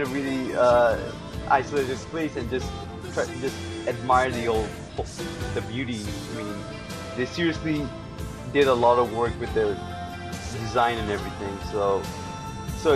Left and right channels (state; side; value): identical; both; correlation 1.00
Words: really isolated place and just admire the beauty. I mean, they seriously did a lot of work with the design and everything. So